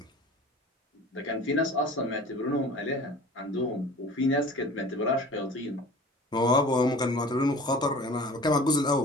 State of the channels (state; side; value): normal; both; correlation 0.43